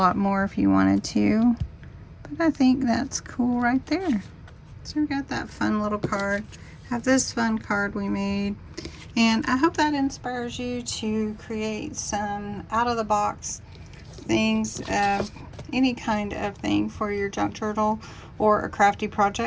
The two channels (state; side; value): identical; both; correlation 1.00